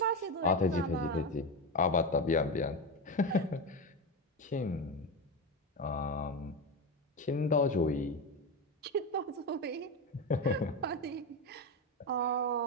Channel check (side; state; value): both; normal; correlation 0.16